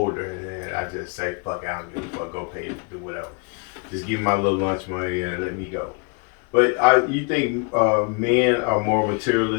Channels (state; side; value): quieter; right; 32.4 dB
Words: and then I just say, fuck, I don't give a fuck, go pay it, do whatever. Just give me my little lunch money and let me go. But you think men are more